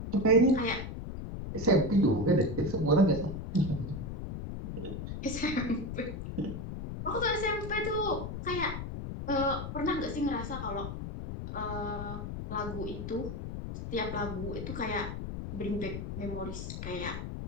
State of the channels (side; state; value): left; noise; rumble, 6 dB below the sound